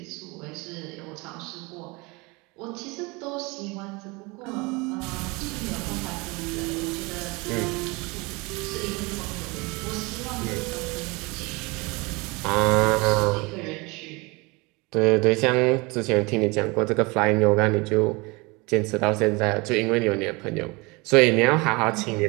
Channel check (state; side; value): quieter; left; 26.2 dB